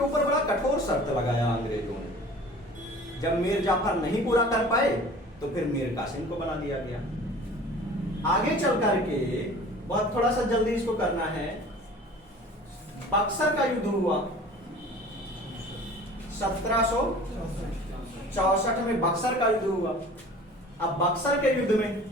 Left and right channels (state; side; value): normal; both; correlation 0.44